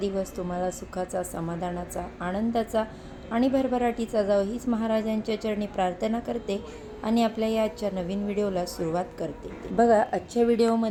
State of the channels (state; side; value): identical; both; correlation 1.00